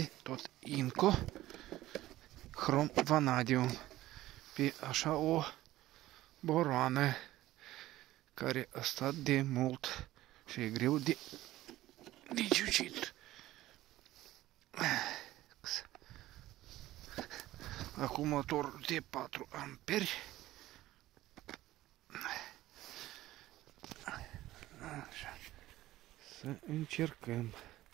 tot Inco Chrome Vanadium pe așa o boroană care a stat de mult și e greu de ciucit. Acumulator de 4 amperi. Așa. Să încercăm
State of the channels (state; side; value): quieter; left; 15.7 dB